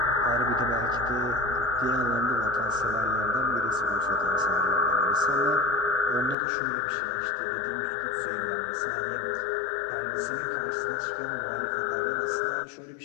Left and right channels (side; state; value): right; drops out; at 6.4 s